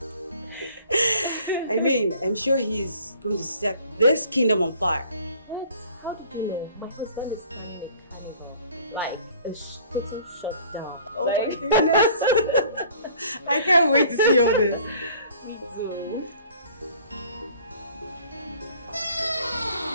I mean, I'm sure he's going to set this kingdom on fire. What? How do you know? My husband is like a shut down. Oh my goodness. I can't wait to see all this. Me too.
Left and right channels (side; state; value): both; inverted; correlation -0.52